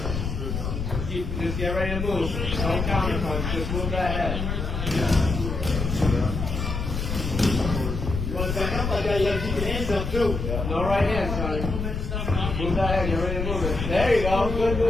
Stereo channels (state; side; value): noise; left; rumble, 3 dB below the sound